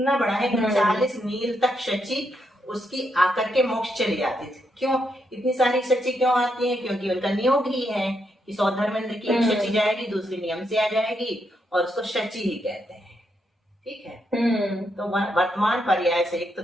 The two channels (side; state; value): both; normal; correlation 0.80